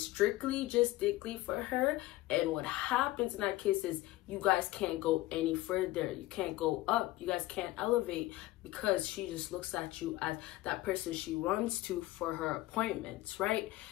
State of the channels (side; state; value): right; quieter; 17.8 dB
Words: strictly just dickly for her. And what happens in that case is you guys can't go any further. You can't go up. You guys can't elevate because she just looks at you as that person she runs to for her appointments, right?